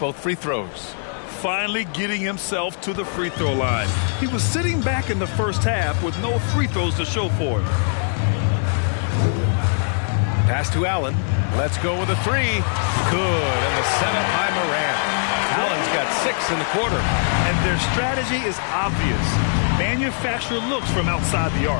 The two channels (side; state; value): right; silent; 65 dB below the other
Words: free throws. Finally getting himself to the free throw line. He was sitting back in the first half with no free throws to show for it. Pass to Allen. Let's go with a 3. Good. And the setup by Morant. Allen's got 6 in the quarter. And their strategy is obvious. Manufacture looks from outside the